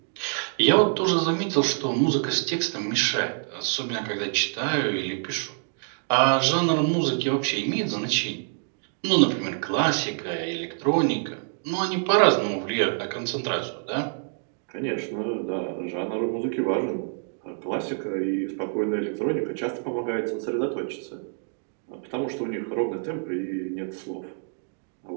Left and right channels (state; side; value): silent; left; 61 dB below the other